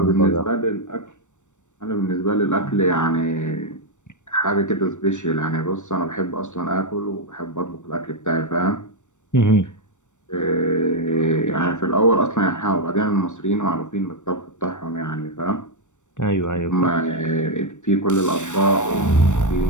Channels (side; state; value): right; late; 0.85 ms